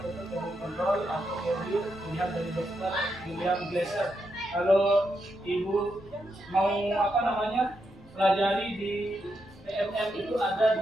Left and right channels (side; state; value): both; normal; correlation 0.83